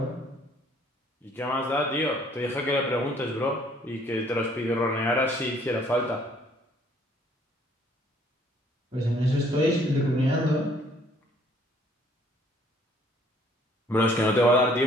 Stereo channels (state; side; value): normal; both; correlation 0.61